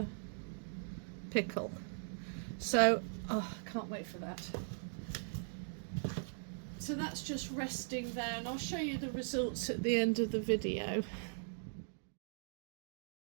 pickle. So I can't wait for that. So that's just resting there, and I'll show you the results at the end of the video.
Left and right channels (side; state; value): left; silent; digital silence